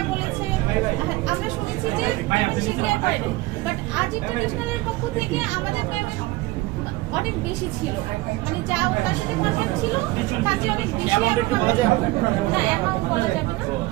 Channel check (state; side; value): quieter; left; 20.2 dB